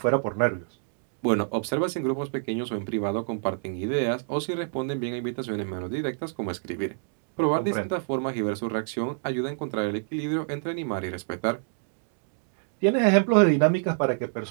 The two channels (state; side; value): silent; left; digital silence